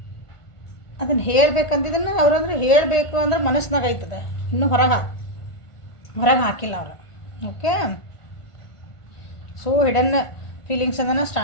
ಅದನ್ನು ಹೇಳಬೇಕಂತಿದ್ದನ್ನು ಅವ್ರು ಅಂದರೆ ಹೇಳಬೇಕು ಅಂದ್ರೆ ಮನಸ್ಸಿನಾಗ ಆಯ್ತದೆ, ಇನ್ನೂ ಹೊರಗೆ ಹಾಕಿಲ್ಲ ಅವರು. ಓಕೆ, ಸೊ ಹಿಡನ್ ಫೀಲಿಂಗ್ಸ್ ಅದನ್ನು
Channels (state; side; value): late; right; 1.4 ms